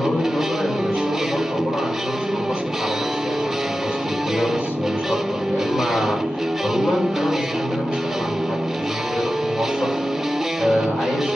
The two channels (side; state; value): both; normal; correlation 0.93